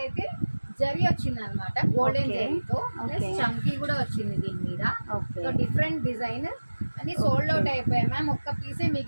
జరీ వచ్చింది అనమాట, గోల్డెన్ జరీతో. చంకీ కూడా వచ్చింది దీని మీద. సో డిఫరెంట్ డిజైన్ అని సోల్డ్ అవుట్ అయిపోయాయి మ్యామ్. ఒక్క పీసే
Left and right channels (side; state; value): both; inverted; correlation -1.00